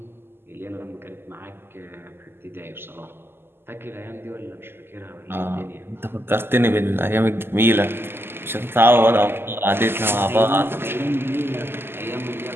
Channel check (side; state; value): left; late; 0.11 ms